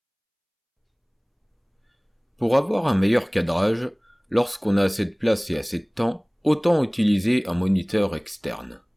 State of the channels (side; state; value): both; identical; correlation 1.00